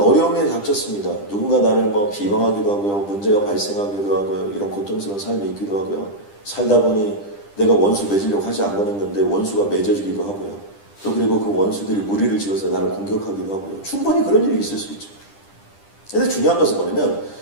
닥쳤습니다. 누군가 나를 뭐 비방하기도 하고요, 문제가 발생하기도 하고요, 이런 고통스러운 삶이 있기도 하고요. 살다 보니 내가 원수 맺으려고 하지 않았는데 원수가 맺어지기도 하고요. 또 그리고 그 원수들이 무리를 지어서 나를 공격하기도 하고요. 충분히 그런 일이 있을 수 있죠. 근데 중요한 것은 뭐냐면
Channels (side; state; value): right; late; 10 ms